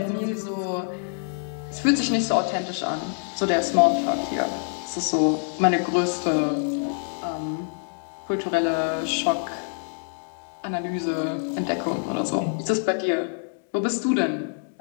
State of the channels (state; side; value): silent; right; 61 dB below the other